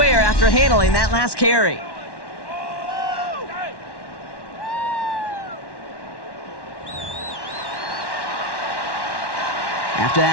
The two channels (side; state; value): right; late; 1.1 ms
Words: after handling that last carry. After